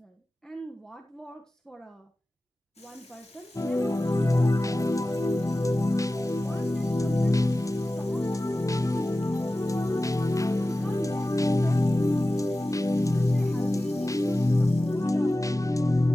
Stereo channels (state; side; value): normal; both; correlation 0.95